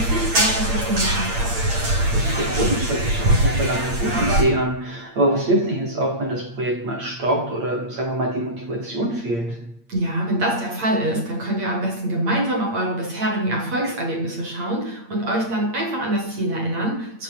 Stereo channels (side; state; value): left; late; 8.7 ms